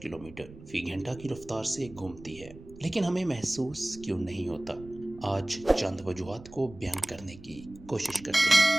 کلومیٹر فی گھنٹہ کی رفتار سے گھومتی ہے، لیکن ہمیں محسوس کیوں نہیں ہوتا؟ آج چند وجوہات کو بیان کرنے کی کوشش کرتے ہیں۔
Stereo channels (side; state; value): right; noise; rumble, 18 dB below the sound